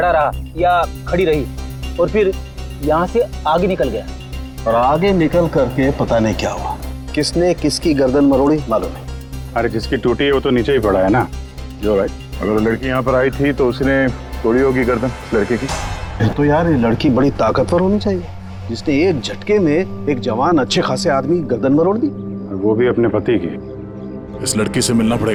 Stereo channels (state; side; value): identical; both; correlation 1.00